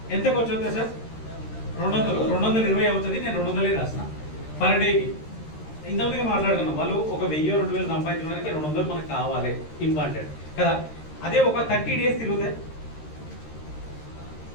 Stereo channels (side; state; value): right; late; 13 ms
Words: ఎంత ఖర్చు అవుతుంది సార్? 220 అవుతుంది. నేను 200 రాసిన పర్ డేకి. ఇంతమందిగా మాట్లాడుతున్నాం, వాళ్ళు ఒక 1000-2000 సంపాదించడానికి 200 మనకు కావాలి, ఇంపార్టెంట్ కదా. అదే ఒక 30 డేస్ తిరిగితే